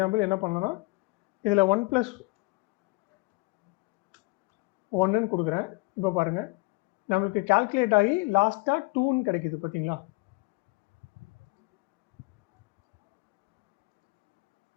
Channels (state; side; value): quieter; right; 24.9 dB